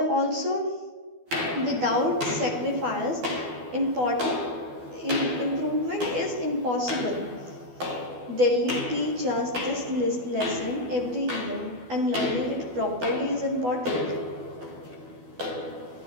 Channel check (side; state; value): left; late; 12 ms